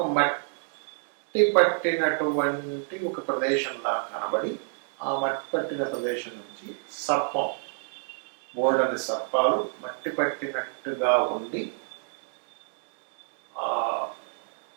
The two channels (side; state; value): left; silent; digital silence